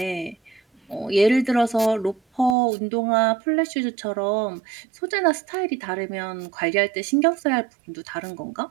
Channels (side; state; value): left; drops out; at 2.6 s